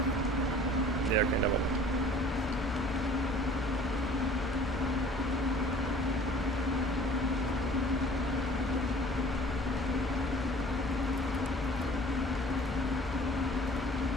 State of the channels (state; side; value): normal; both; correlation 0.49